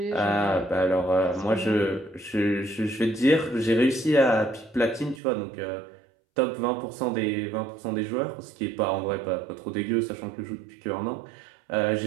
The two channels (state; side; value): drops out; left; at 5.2 s